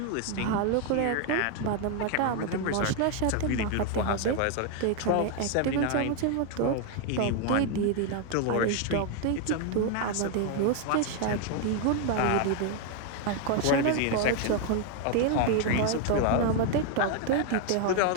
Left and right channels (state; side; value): different; both; correlation 0.00